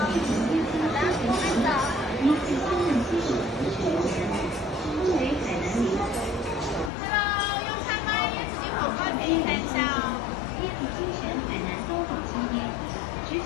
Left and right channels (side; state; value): right; drops out; at 6.9 s